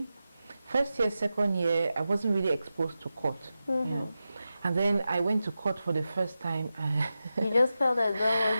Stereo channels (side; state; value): both; inverted; correlation -0.92